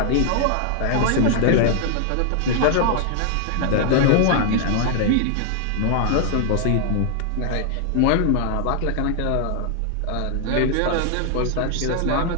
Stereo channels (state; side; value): different; both; correlation 0.00